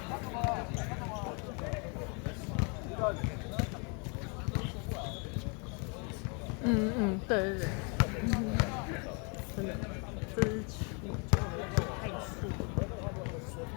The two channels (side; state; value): right; quieter; 34.9 dB